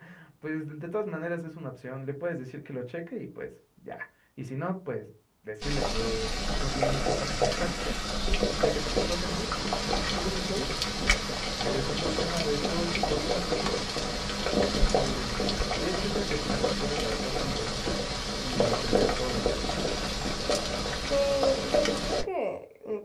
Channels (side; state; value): both; identical; correlation 1.00